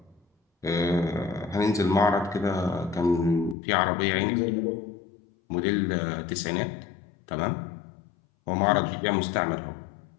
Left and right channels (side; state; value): right; drops out; at 3.6 s